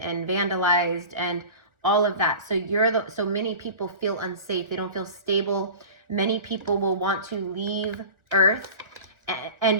vandalized and all of that. So so many people feel unsafe. They don't feel stable. Many people will want to leave Earth.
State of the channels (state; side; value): late; left; 1.5 ms